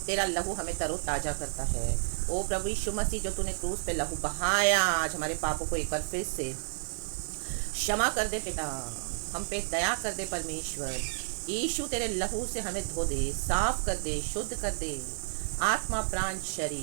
तेरा लहू हमें तरोताजा करता है। ओ प्रभु यीशु मसीह, जो तूने क्रूस पे लहू बहाया, आज हमारे पापों को एक बार फिर से क्षमा कर दे पिता, हम पे दया कर दे परमेश्वर। यीशु तेरे लहू से हमें धो दे, साफ कर दे, शुद्ध कर दे, आत्मा प्राण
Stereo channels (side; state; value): left; silent; 57 dB below the other